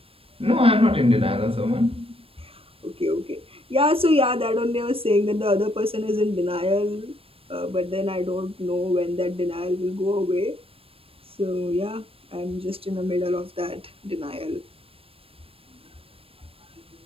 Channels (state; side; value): late; left; 0.28 ms